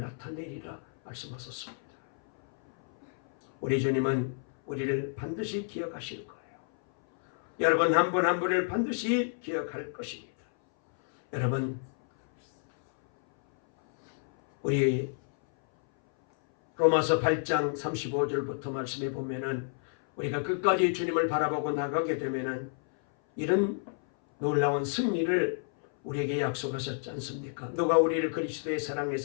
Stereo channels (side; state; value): right; silent; 58 dB below the other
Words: 말씀하셨습니다. 우리 주님은 우리를 반드시 기억하실 거예요. 여러분 한 분 한 분을 반드시 기억할 것입니다. 여러분, 우리 로마서 8장 35절부터 말씀해 보면은 우리가 끝까지 주님을 바라보고 나가게 되면은 이런 놀라운 승리를 우리에게 약속하셨지 않습니까? 누가 우리를 그리스도의